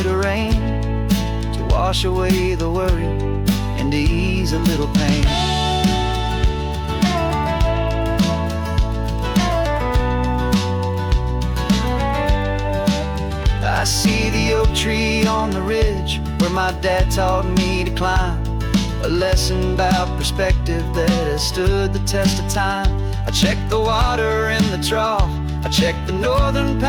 of rain to wash away the worry and to ease a little pain. I see the oak tree on the ridge where my dad taught me to climb. A lesson about perspective that has stood the test of time. I check the water in the trough, I check the northern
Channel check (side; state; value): both; identical; correlation 1.00